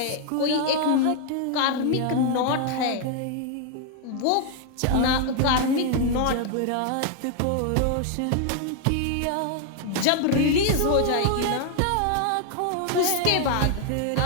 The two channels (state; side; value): different; both; correlation 0.00